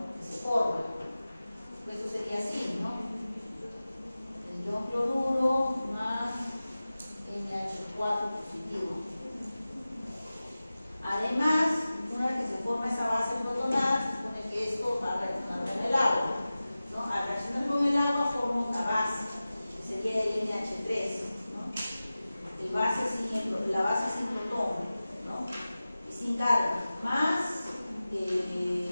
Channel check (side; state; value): both; inverted; correlation -0.96